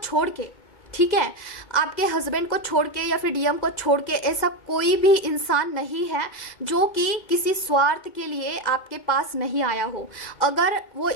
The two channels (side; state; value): right; late; 2.1 ms